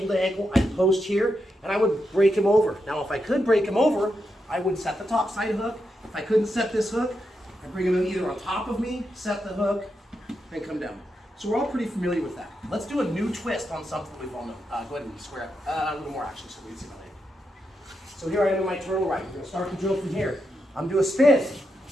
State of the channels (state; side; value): normal; both; correlation 0.85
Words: to ankle, I'd post here, and I would break him over. Now if I could break him over, I would set the top side hook. If I couldn't set this hook, I'd bring him either on top of me, set the hook, and come down. So we're all pretty familiar with that. Let's do a new twist on something we've all known. Go ahead and square up a little more actually so we can see my leg. So here I am in my turtle ride. We're gonna start the drill from here. I'm gonna do a spin,